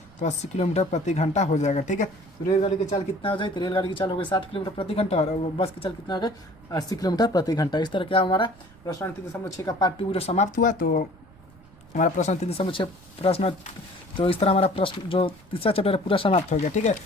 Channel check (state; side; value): noise; right; rumble, 25 dB below the sound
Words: तो 80 किलोमीटर प्रति घंटा हो जाएगा। ठीक है, तो रेलगाड़ी की चाल कितना हो जाए तो रेलगाड़ी की चाल हो गई 60 किलोमीटर प्रति घंटा और बस की चाल कितना हो गई 80 किलोमीटर प्रति घंटा। इस तरह क्या हमारा प्रश्न 3.6 का पार्ट 2 वीडियो समाप्त हुआ। तो हमारा प्रश्न 3.6 प्रश्न, तो इस तरह हमारा प्रश्न जो तीसरा चैप्टर है पूरा समाप्त हो गया। ठीक है,